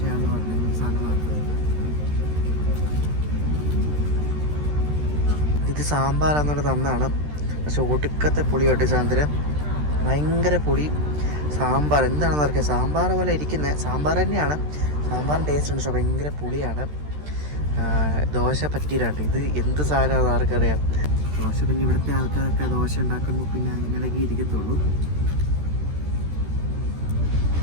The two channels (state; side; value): late; left; 13 ms